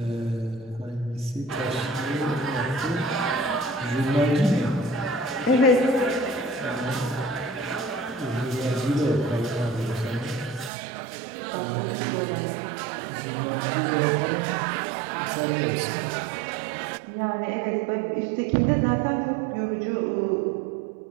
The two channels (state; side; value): drops out; left; at 10.7 s